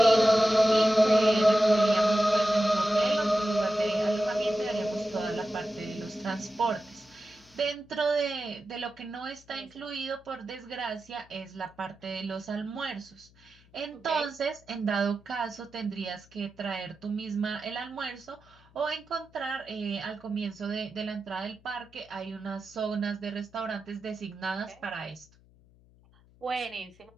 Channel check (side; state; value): left; noise; hum, 28 dB below the sound